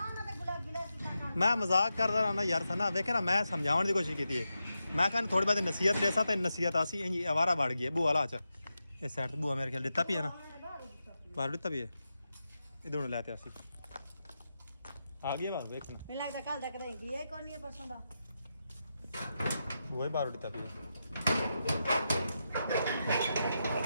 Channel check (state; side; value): inverted; both; correlation -0.88